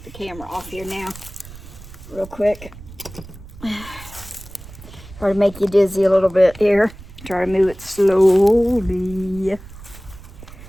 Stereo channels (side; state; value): right; noise; rumble, 17 dB below the sound